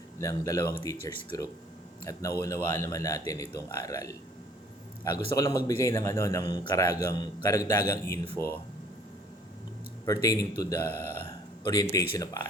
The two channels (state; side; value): normal; both; correlation 0.56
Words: ng dalawang teachers group. At nauunawaan naman natin itong aral. Gusto ko lang magbigay ng karagdagang info pertaining to the orientation of